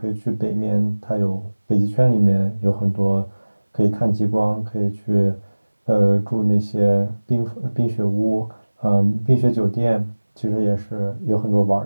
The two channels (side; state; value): both; inverted; correlation -1.00